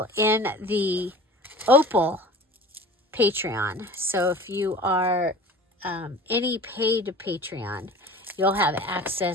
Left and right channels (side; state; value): both; normal; correlation 0.40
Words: in the Opal Patreon. So if you are any paid Patreon, you'll have